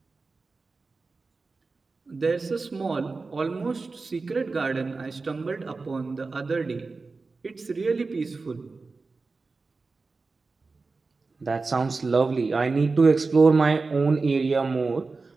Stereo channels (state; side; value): quieter; left; 4.0 dB